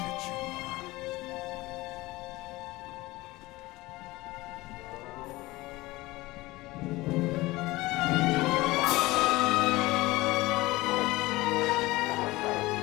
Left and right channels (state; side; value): quieter; right; 20.0 dB